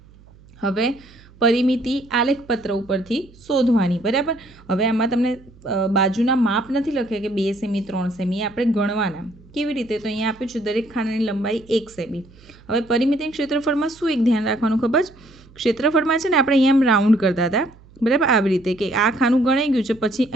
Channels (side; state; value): right; noise; hum, 25 dB below the sound